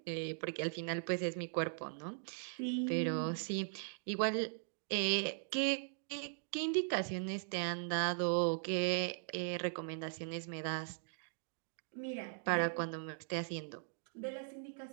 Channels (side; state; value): left; silent; digital silence